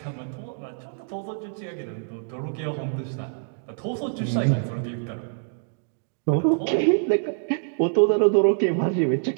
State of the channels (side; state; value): left; silent; digital silence